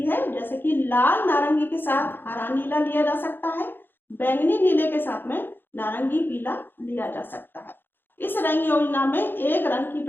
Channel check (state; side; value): late; right; 0.098 ms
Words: है, जैसे कि लाल नारंगी के साथ हरा नीला लिया जा सकता है, बैंगनी नीले के साथ में नारंगी पीला लिया जा सकता है। इस रंग योजना में एक रंग की